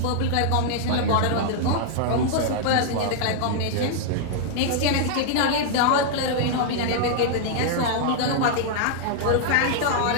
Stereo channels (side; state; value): both; different; correlation -0.01